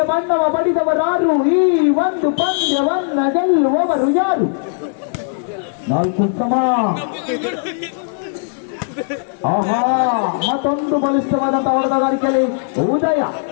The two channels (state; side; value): silent; right; digital silence